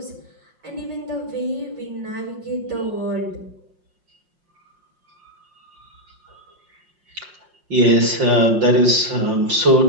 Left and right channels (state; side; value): late; left; 5.5 ms